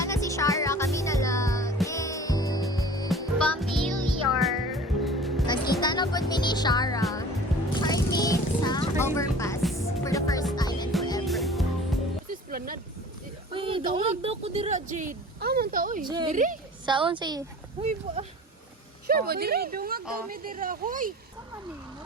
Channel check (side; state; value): both; normal; correlation 0.43